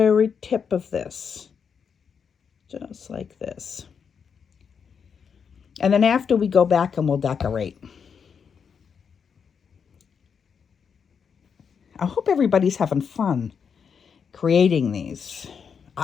tip of this. Just like this. And then after we go back and we'll decorate. I hope everybody's having fun creating these.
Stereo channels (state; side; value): quieter; right; 6.6 dB